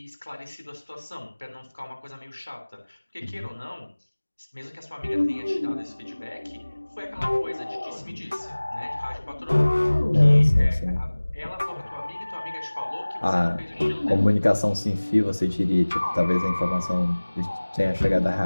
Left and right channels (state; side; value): inverted; both; correlation -1.00